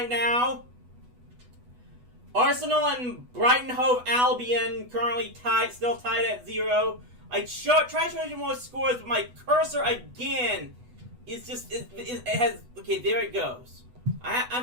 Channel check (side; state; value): left; late; 8.1 ms